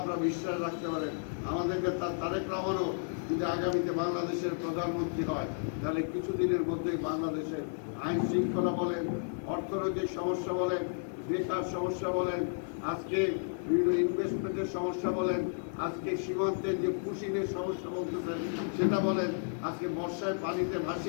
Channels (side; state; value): right; silent; 56 dB below the other